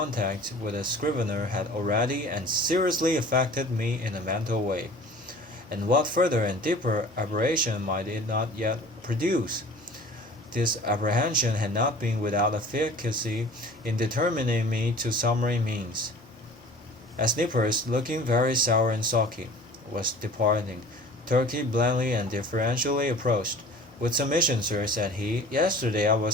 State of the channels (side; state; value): both; normal; correlation 0.45